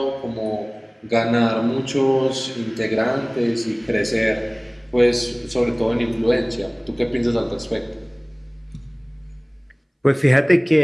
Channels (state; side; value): identical; both; correlation 1.00